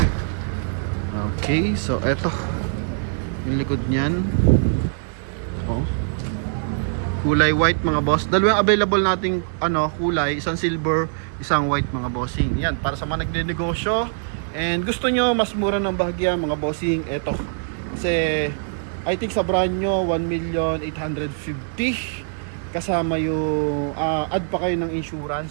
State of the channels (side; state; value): left; silent; digital silence